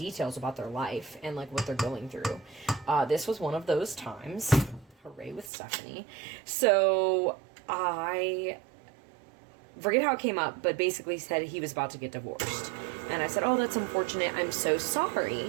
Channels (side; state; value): left; drops out; at 5.5 s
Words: about their life and what they're going through. This was one of those times. Hooray with Stephanie. So I forget how it came up, but basically said he was about to get divorced. And I said, oh, that's unfortunate. I'm so sorry.